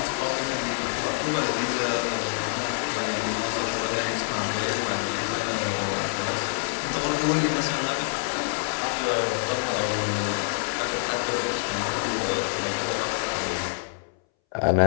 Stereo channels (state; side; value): silent; right; 61 dB below the other